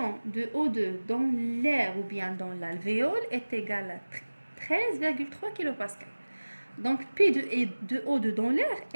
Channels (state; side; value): inverted; both; correlation -1.00